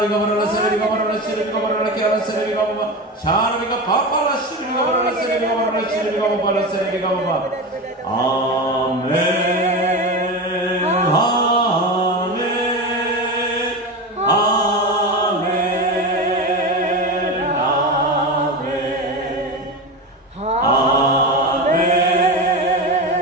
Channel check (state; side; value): normal; both; correlation 0.22